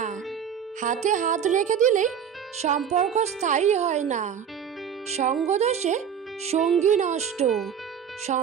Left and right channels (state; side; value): quieter; left; 8.0 dB